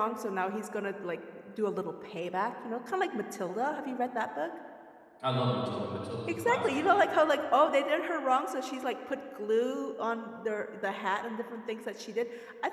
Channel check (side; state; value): both; identical; correlation 1.00